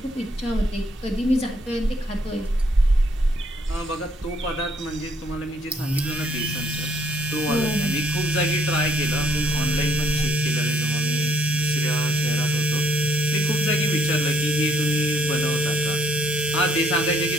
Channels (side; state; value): both; normal; correlation 0.66